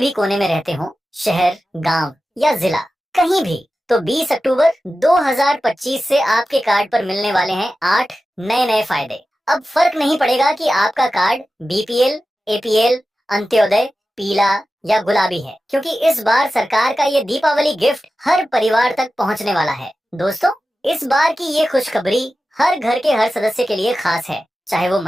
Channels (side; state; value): both; normal; correlation 0.94